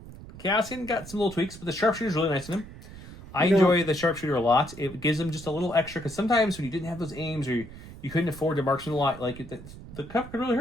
Cassian got some little tweaks, but the sharpshooter's really nice in him. I enjoy the sharpshooter a lot. It gives him just a little extra, because sometimes when you didn't have those aims, or you couldn't afford to marksman a lot, like the cover could really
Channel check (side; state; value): right; noise; rumble, 15 dB below the sound